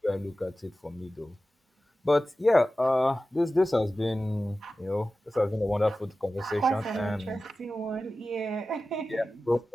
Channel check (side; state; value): both; normal; correlation 0.95